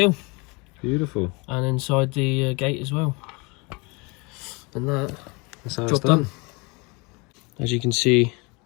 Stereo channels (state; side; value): quieter; right; 28.4 dB